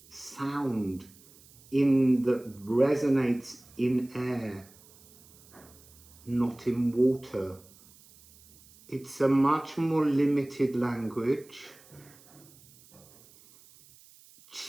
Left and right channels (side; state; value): right; noise; hiss, 25 dB below the sound